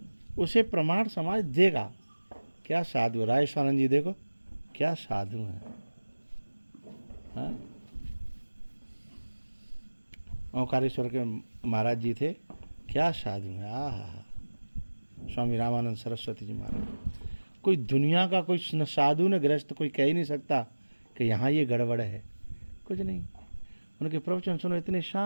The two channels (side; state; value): both; inverted; correlation -1.00